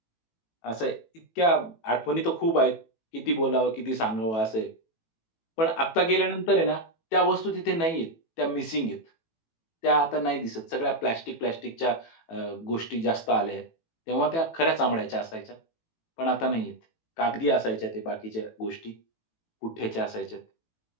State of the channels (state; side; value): late; right; 18 ms